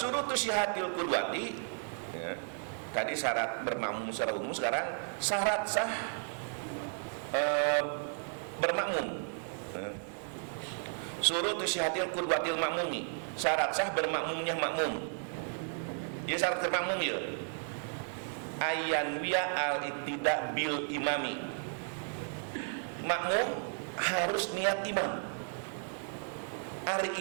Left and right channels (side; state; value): left; silent; 55 dB below the other